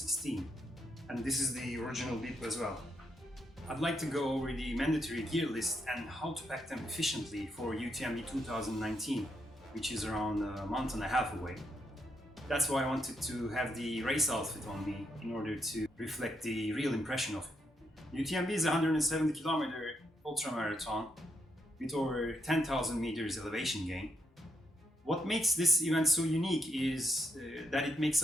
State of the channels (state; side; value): normal; both; correlation 0.78